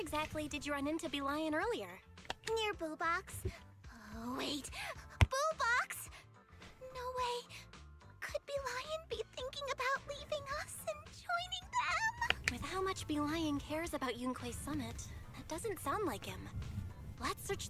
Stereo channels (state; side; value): identical; both; correlation 1.00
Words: did you run into Bee Lion earlier? Near Boo Box. Oh, wait. Boo Box? No way. Could Bee Lion be thinking about leaving us and joining them? With how much Bee Lion cares about Yunque's summit, that doesn't sound like him. Let's search